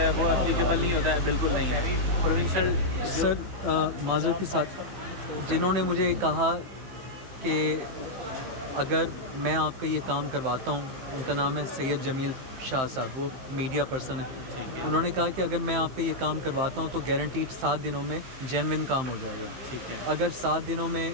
وہ اپلیکیبل نہیں ہوتا ہے. بالکل نہیں ہے. پروونشل سر معذرت کے ساتھ جنہوں نے مجھے کہا کہ اگر میں آپ کا یہ کام کرواتا ہوں، ان کا نام ہے سید جمیل شاہ صاحب، وہ میڈیا پرسن ہے. انہوں نے کہا کہ اگر میں آپ کا یہ کام کرواتا ہوں تو گارنٹیڈ 7 دنوں میں جینوئن کام ہو جائے گا. اگر 7 دنوں میں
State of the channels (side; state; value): left; late; 15 ms